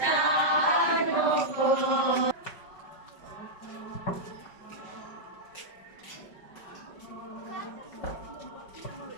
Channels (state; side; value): late; right; 5.3 ms